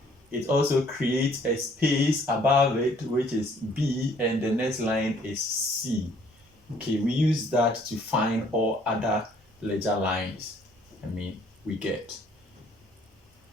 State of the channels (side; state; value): both; normal; correlation 0.61